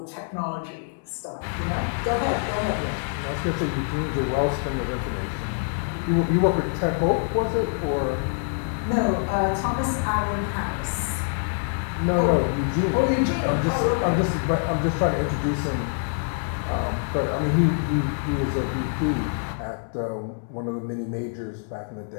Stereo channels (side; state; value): right; silent; 61 dB below the other